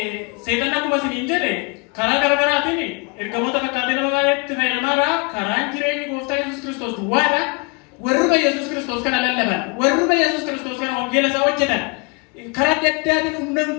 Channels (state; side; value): quieter; right; 32.4 dB